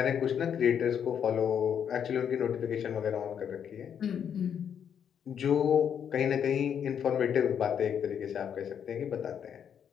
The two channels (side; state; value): right; quieter; 8.3 dB